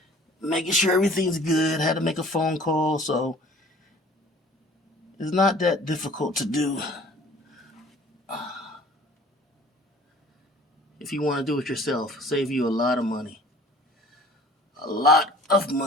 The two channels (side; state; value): both; normal; correlation 0.50